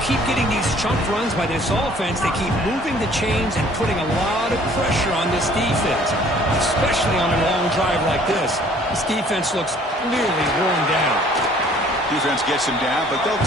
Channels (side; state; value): both; normal; correlation 0.56